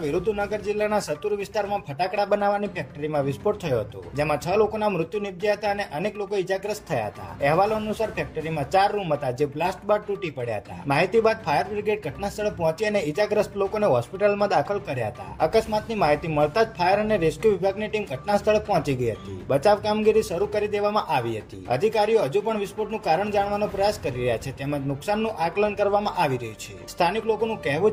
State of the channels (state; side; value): identical; both; correlation 1.00